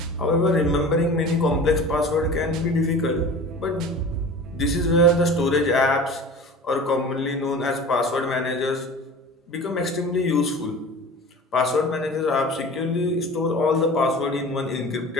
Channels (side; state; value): both; normal; correlation 0.38